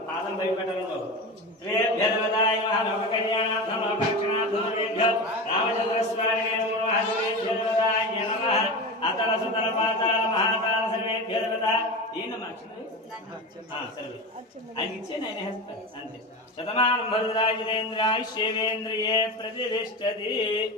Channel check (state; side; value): normal; both; correlation 0.24